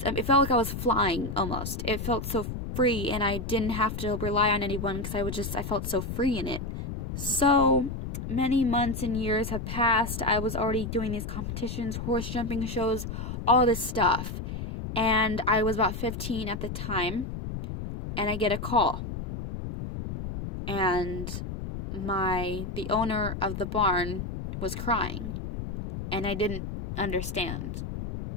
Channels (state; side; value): noise; left; rumble, 6 dB below the sound